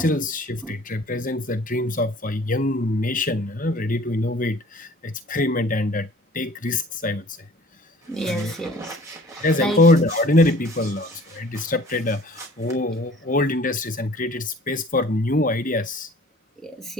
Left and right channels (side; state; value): both; normal; correlation 0.50